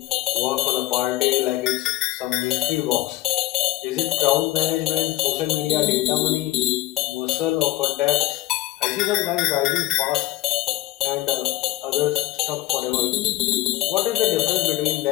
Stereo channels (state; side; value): quieter; right; 16.9 dB